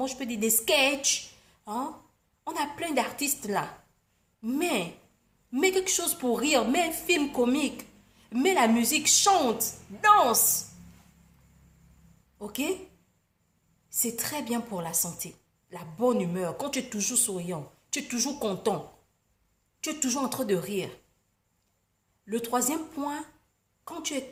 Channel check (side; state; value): both; identical; correlation 1.00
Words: je peux dire, des sketchs. Hein? On a plein d'artistes là. Mets quelque chose pour rire. Mets un film comique. Mets la musique, chante, danse. Ok? C'est très bien pour la santé. La bonne humeur. Quand tu es toujours souriant, tu es toujours content. Tu es toujours en train de rire. Le troisième point, quand tu es